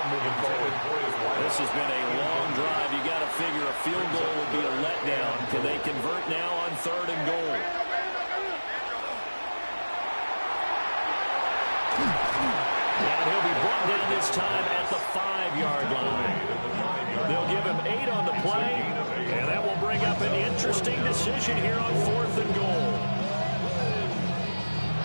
moving forward. This has been a long drive. You got to figure a field goal would be a letdown. Can they convert now on 3rd and goal? And he'll be brought down this time at the 5-yard line. They'll give him 8 on the play, and that will bring up an interesting decision here on 4th and goal.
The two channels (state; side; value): inverted; both; correlation -1.00